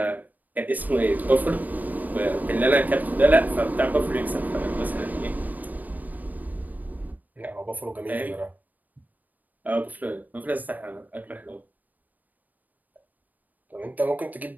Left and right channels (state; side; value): late; left; 0.083 ms